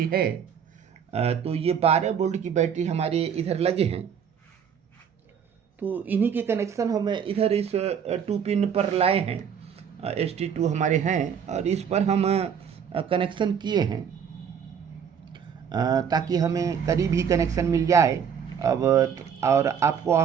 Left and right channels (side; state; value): left; quieter; 7.6 dB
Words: है। तो ये 12 वोल्ट की बैटरी हमारे इधर लगे हैं। तो इन्हीं के कनेक्शन हम इधर इस 2 पिन पर लाए हैं। ST2 हमारे हैं और इस पर हम कनेक्शन किए हैं ताकि हमें करीब ही कनेक्शन मिल जाए। अब और आपको